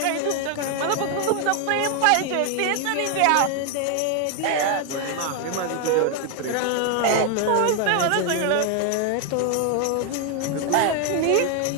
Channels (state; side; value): different; both; correlation 0.00